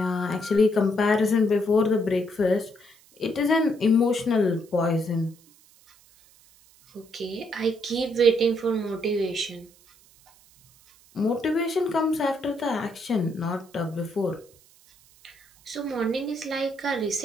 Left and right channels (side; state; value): right; noise; hiss, 28 dB below the sound